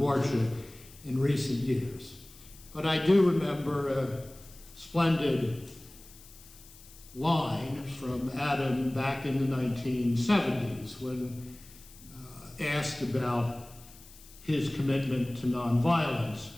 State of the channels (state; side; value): noise; left; hiss, 21 dB below the sound